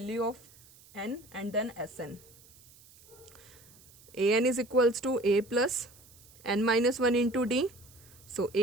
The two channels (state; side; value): noise; right; hiss, 24 dB below the sound